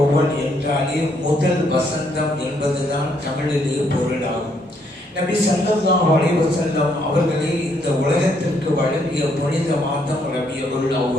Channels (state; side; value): normal; both; correlation 0.72